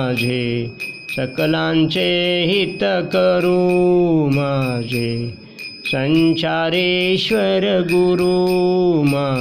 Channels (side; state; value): both; identical; correlation 1.00